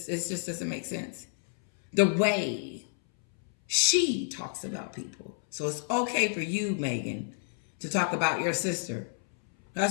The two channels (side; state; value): right; silent; 58 dB below the other